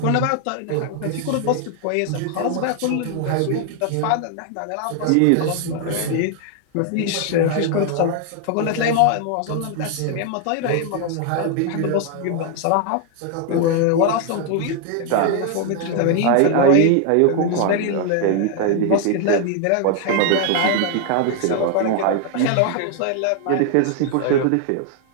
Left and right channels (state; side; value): different; both; correlation 0.00